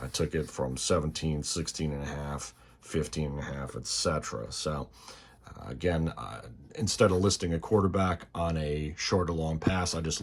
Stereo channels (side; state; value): both; identical; correlation 1.00